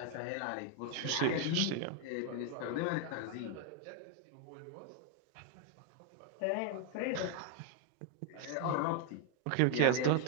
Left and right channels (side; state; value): both; different; correlation 0.01